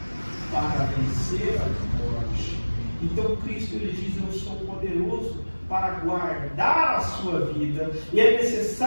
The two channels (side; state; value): both; inverted; correlation -1.00